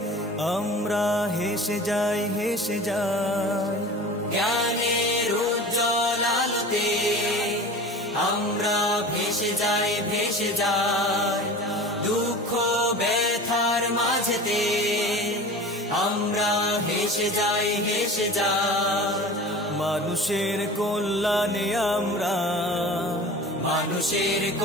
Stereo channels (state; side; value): normal; both; correlation 0.37